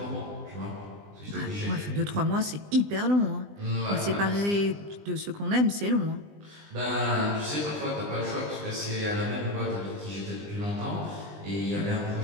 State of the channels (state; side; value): late; left; 20 ms